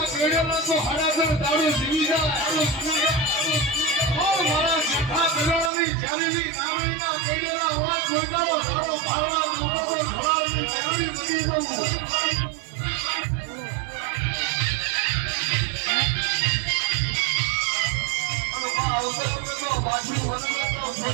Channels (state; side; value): drops out; left; at 5.7 s